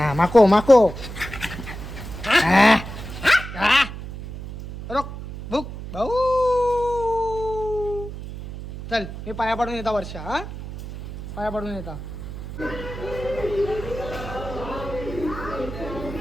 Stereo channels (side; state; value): right; noise; hum, 10 dB below the sound